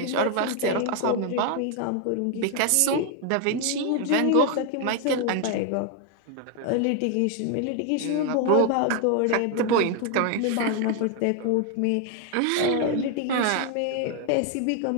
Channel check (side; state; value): both; different; correlation 0.01